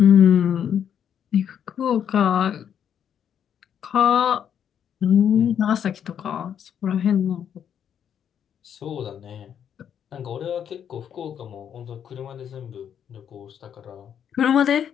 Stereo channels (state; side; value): quieter; right; 8.7 dB